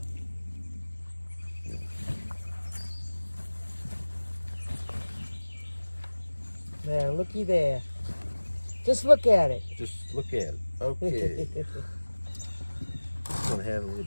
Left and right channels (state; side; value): inverted; both; correlation -1.00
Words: There, looky there. Just look at it. Just look at it. Okay. This one had a little